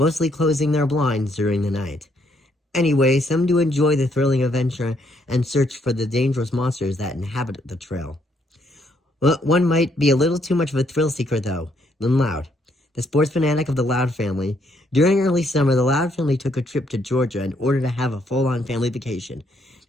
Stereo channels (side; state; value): both; normal; correlation 0.71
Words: closing their blinds during the night. Anyway, some do enjoy the thrilling adventure and search for the dangerous monsters that inhabit the trail. Well, one might be a little too much of a thrill seeker, though, than Loud. The sports fanatic of the Loud family. During early summer, the Loud family took a trip to Georgia in order to have a full-on family vacation,